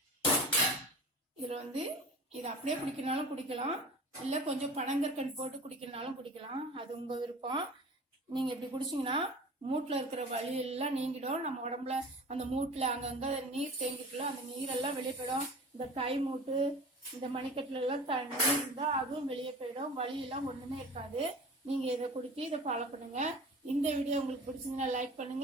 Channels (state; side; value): normal; both; correlation 0.39